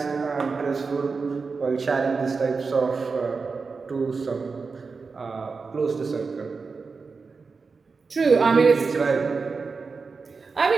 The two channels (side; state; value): left; quieter; 4.6 dB